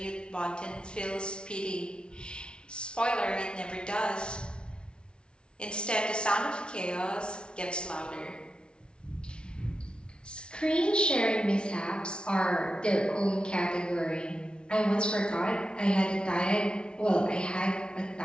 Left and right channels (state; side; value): late; right; 0.056 ms